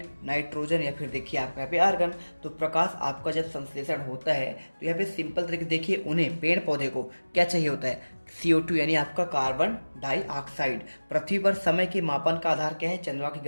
नाइट्रोजन, या फिर देखिए आपका यहाँ पे आर्गन। तो प्रकाश आपका जब संश्लेषण होता है तो यहाँ पे सिंपल तरीके देखिए, उन्हें पेड़ पौधे को क्या चाहिए होता है, CO2 यानी आपका कार्बन डाइऑक्साइड। पृथ्वी पर समय के मापन का आधार क्या है, चंद्रमा की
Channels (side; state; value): both; inverted; correlation -1.00